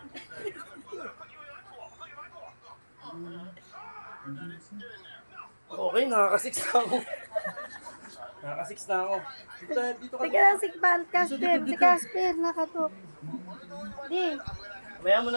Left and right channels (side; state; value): both; inverted; correlation -1.00